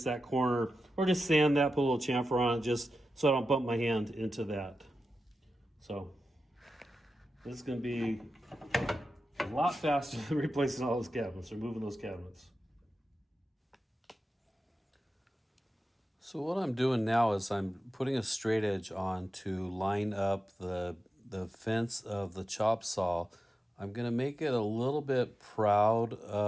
that corner or just sand that, put a little chamfer on it just so I don't bump my hand into that. So this is going to be a lot faster than replacing all those cabinets or moving those cabinets. So what I'm doing now is I'm putting a straight edge on to line up the fence of the chop saw. I'm going to make it a little bit proud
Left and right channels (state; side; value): normal; both; correlation 0.92